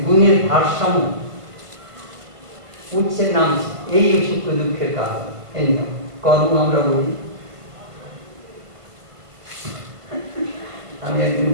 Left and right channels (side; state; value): left; late; 1.5 ms